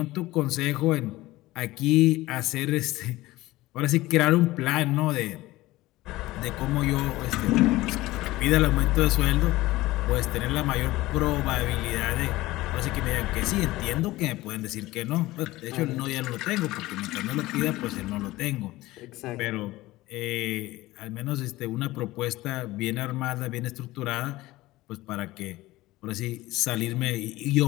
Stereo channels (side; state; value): right; quieter; 18.2 dB